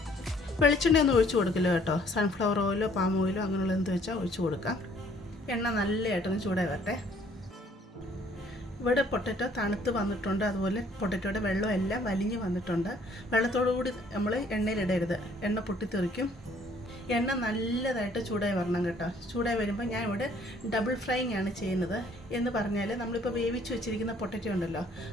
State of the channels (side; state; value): both; normal; correlation 0.61